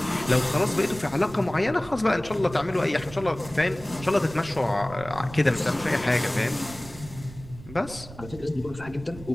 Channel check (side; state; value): right; noise; rumble, 16 dB below the sound